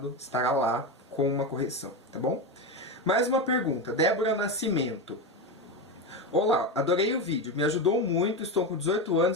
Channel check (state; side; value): normal; both; correlation 0.16